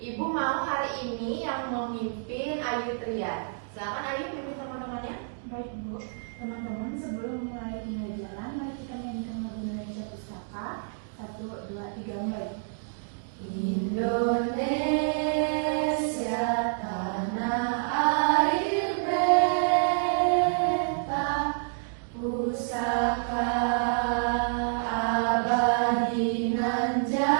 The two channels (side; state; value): left; silent; digital silence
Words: mau hari ini yang memimpin Ayu Tria. Silakan Ayu pimpin teman-temannya. Baik Bu, teman-teman sebelum mulai pembelajaran, mari kita menyanyikan lagu Indonesia Pustaka. 1, 2, 3, mulai. Indonesia tanah air beta, pusaka abadi nan